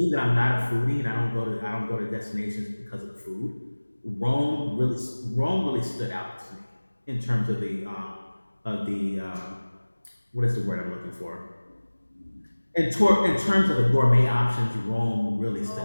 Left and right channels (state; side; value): inverted; both; correlation -1.00